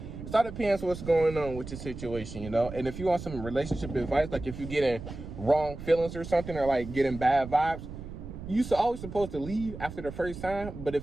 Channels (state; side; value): noise; right; rumble, 11 dB below the sound